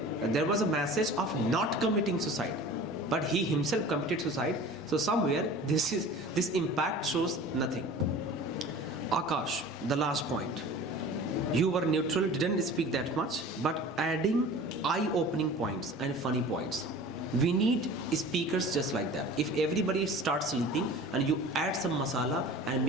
there was a message of not committing suicide, but he himself committed suicide, so somewhere this impact shows nothing. Akash, the last point. You were neutral, didn't speak that much, but adding eye-opening points and funny points. We need speakers just like that. If everybody starts sleeping and you add some masala and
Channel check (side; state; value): both; normal; correlation 0.41